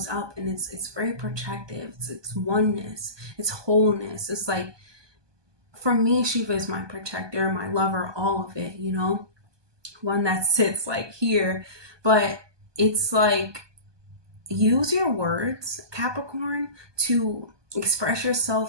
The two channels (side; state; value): left; late; 1.2 ms